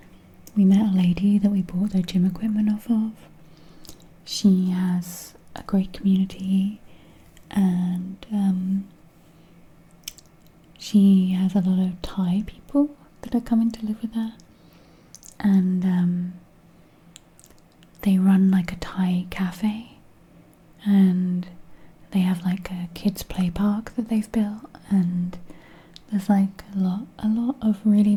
We met a lady that we bought their gym equipment off of. She has a great community, and she has a lot of Thai people that are coming to live with her, and they run like a Thai cafe, and they have like a kids play park that they've built, and there's like a lot of really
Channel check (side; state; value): both; identical; correlation 1.00